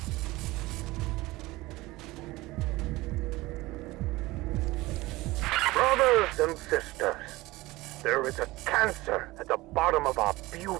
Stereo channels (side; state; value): left; quieter; 19.9 dB